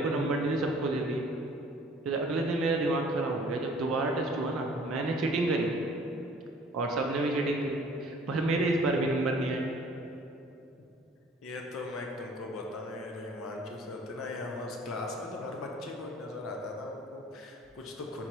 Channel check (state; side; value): normal; both; correlation 0.53